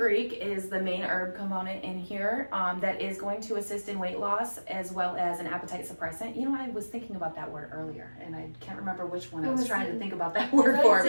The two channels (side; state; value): both; inverted; correlation -1.00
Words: is the main herb component in here that is going to assist in weight loss as well as an appetite suppressant. I was thinking about that word earlier, and I can't remember which one I was trying to think about that word for.